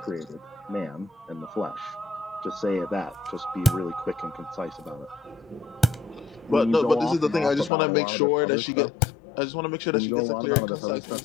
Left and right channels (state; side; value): drops out; right; at 7.7 s